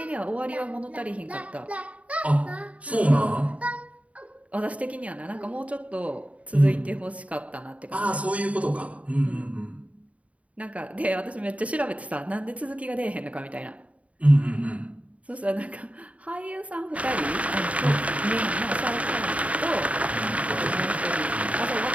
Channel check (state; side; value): late; left; 0.067 ms